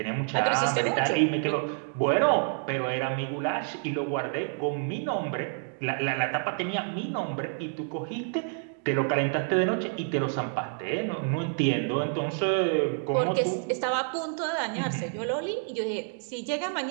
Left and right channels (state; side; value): silent; left; 58 dB below the other